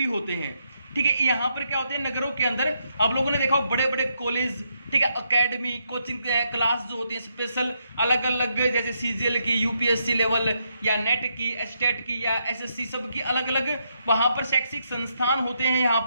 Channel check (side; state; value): both; inverted; correlation -0.78